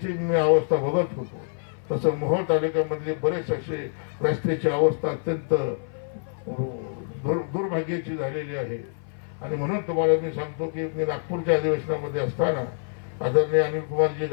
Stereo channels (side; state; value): right; silent; 57 dB below the other